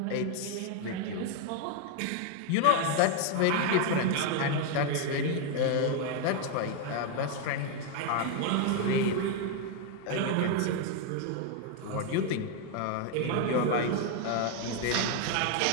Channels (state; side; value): different; both; correlation 0.01